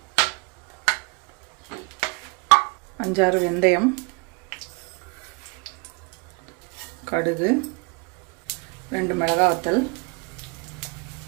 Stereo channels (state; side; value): quieter; left; 31.9 dB